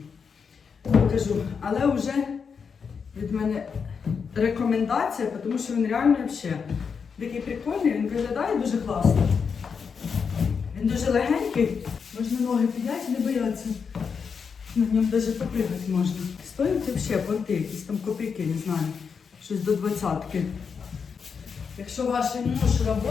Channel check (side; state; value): right; quieter; 6.0 dB